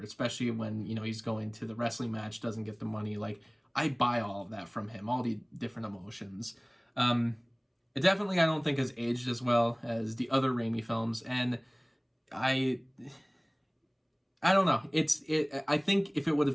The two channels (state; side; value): identical; both; correlation 1.00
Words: especially when, he's going to the wrestling match, doesn't get the money. Like, I buy all of that from him, all the different emotions. It definitely, I don't think, has aged as well as the other Raimi films, and I don't know. I think if it would